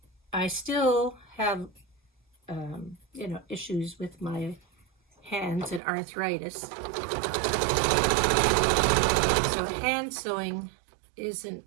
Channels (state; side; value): drops out; left; at 5.8 s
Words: I still have, you know, issues with my hands and arthritis. So hand sewing isn't